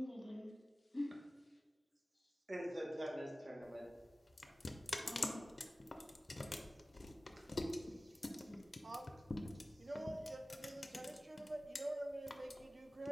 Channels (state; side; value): normal; both; correlation 0.97